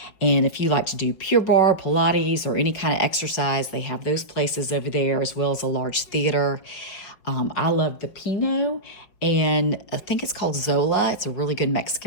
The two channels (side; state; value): right; late; 5.2 ms